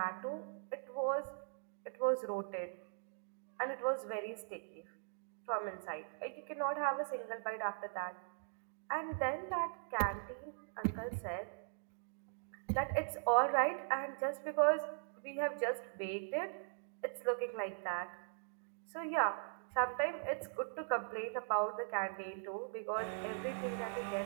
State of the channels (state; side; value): silent; left; digital silence